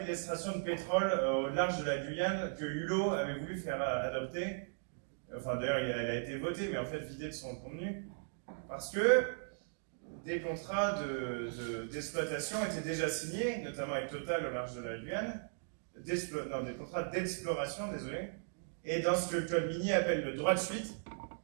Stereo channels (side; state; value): left; silent; digital silence